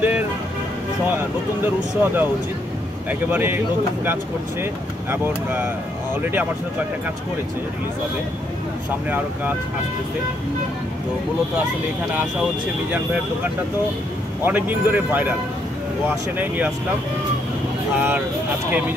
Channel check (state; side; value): normal; both; correlation 0.73